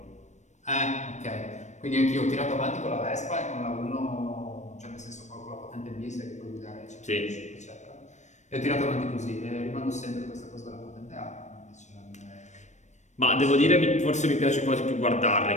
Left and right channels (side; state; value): right; late; 0.34 ms